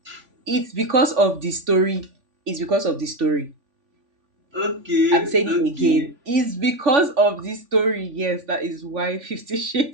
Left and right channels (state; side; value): late; left; 3.5 ms